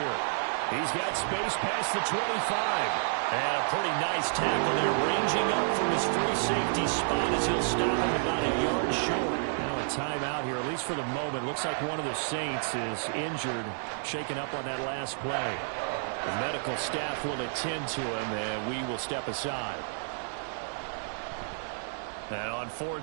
He's got space past the 25. And a pretty nice tackle there, ranging up from his free safety spot as he'll stop him about a yard short. Now a timeout here, at least for the moment. Looks like one of the Saints is injured, shaken up on that last play. The medical staff will attend to him, and we will step aside. And on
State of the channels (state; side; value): silent; left; 58 dB below the other